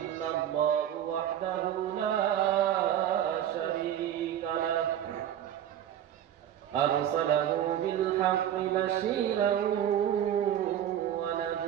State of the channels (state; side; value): quieter; left; 10.7 dB